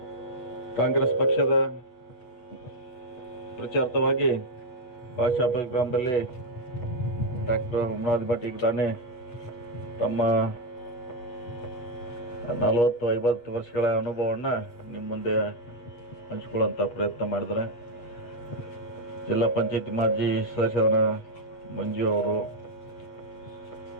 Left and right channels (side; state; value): right; late; 8.1 ms